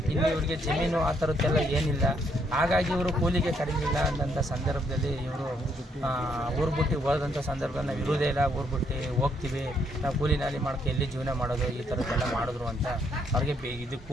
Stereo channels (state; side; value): normal; both; correlation 0.72